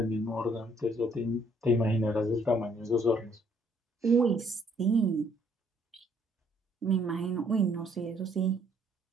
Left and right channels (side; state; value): both; normal; correlation 0.66